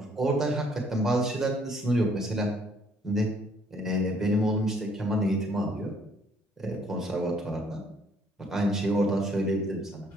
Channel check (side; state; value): both; normal; correlation 0.64